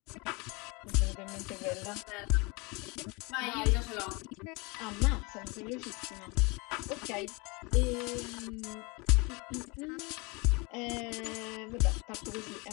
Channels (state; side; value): quieter; right; 27.8 dB